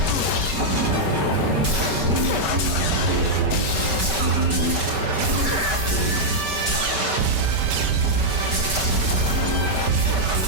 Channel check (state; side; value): late; left; 5.4 ms